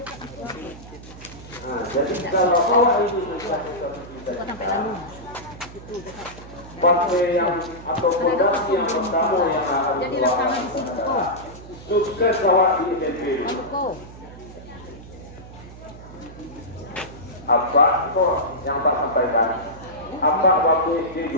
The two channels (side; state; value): right; noise; hum, 16 dB below the sound